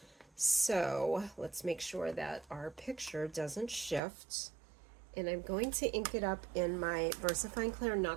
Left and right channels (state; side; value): drops out; left; at 4.0 s